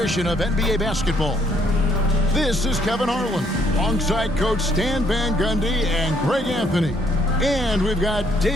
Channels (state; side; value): normal; both; correlation 0.68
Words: of NBA basketball. This is Kevin Harlan, alongside Coach Stan Van Gundy and Greg Anthony. And we've got